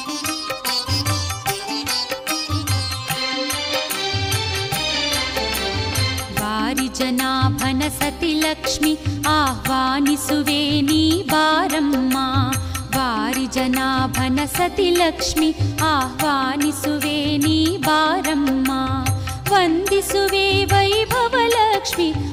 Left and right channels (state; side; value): identical; both; correlation 1.00